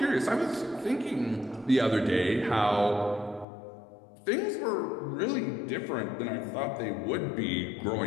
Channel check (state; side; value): drops out; right; at 3.5 s